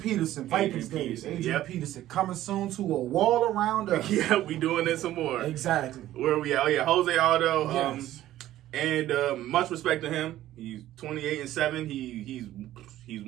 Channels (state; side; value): quieter; left; 13.8 dB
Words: Vikings days. Adrian Peterson coming soon to a wall around us. Yeah, we doing this some more. Exactly. Where are we at? Oh yeah, Jose Aldo. Yes. And much respect to him. He's 28-7. He's